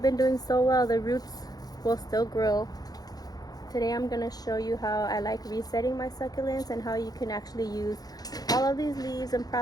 been doing so well. The roots will still grow. Today I'm going to show you how I like resetting my succulents and how you can actually use all of these leaves and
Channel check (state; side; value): late; right; 0.19 ms